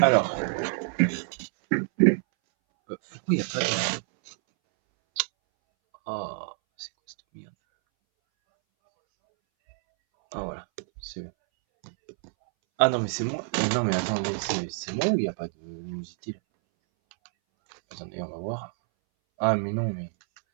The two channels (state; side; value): silent; left; 60 dB below the other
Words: pourquoi il n'y a pas de. Oh, c'est quoi cette merde? Ah, voilà. C'est bon. Ah non, mais c'est moi. Non, mais attends, c'est moi ou il n'y a pas de luminosité là? Attendez, on va voir. Ah, mais non, mais.